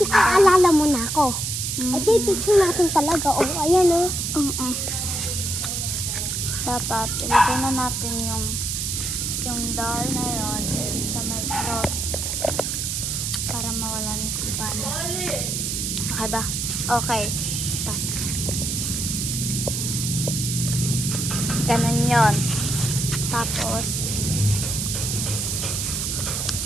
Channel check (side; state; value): right; noise; hiss, 2 dB below the sound